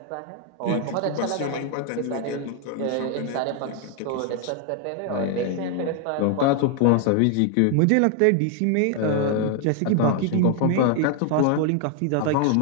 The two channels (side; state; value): both; different; correlation 0.00